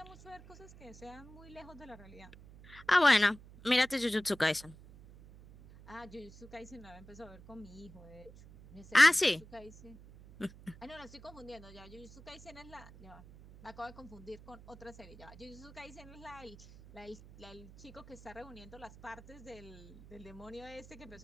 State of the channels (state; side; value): noise; right; hum, 19 dB below the sound